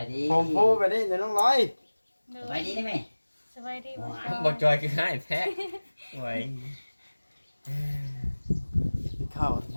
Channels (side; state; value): both; inverted; correlation -1.00